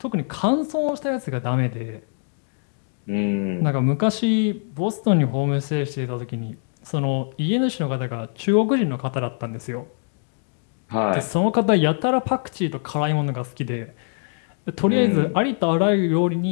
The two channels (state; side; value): silent; right; 58 dB below the other